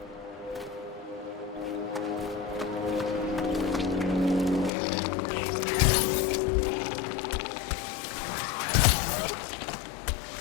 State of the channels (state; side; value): drops out; right; at 4.7 s